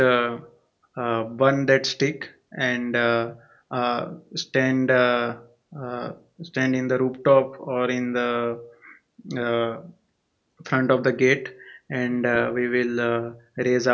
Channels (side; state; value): both; identical; correlation 1.00